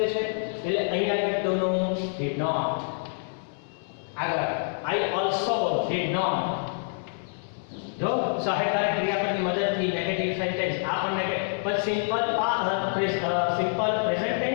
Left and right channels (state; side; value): silent; right; 60 dB below the other